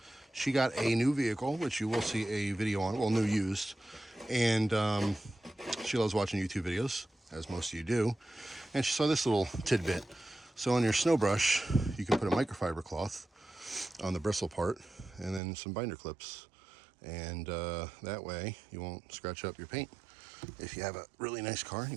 She got a new vehicle, which you will see a video on, well, new used. And she loves watching YouTube videos, as most of you do. And she saw this little tidbit. So on your snow brush, you can put a microfiber cloth on the bristle part and then some binder clips. And that way you won't scratch up your paint if you have a really nice car and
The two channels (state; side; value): drops out; left; at 15.4 s